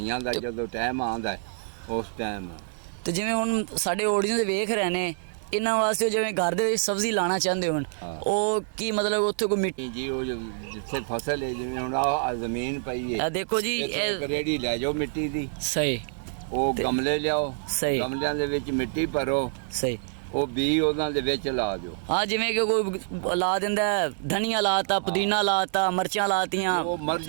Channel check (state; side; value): silent; left; digital silence